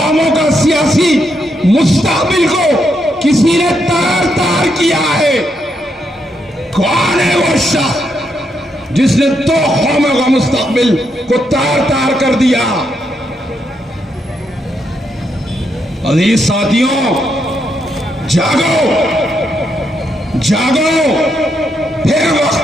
का सियासी मुस्तकबिल को किसी ने तार तार किया है। कौन है वो शख्स जिसने दो कौमों का मुस्तकबिल को तार तार कर दिया? अजीज साथियों, जागो, जागो, फिर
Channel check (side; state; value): both; normal; correlation 0.79